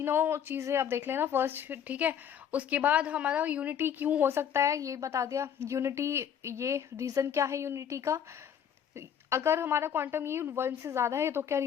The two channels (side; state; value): right; quieter; 8.7 dB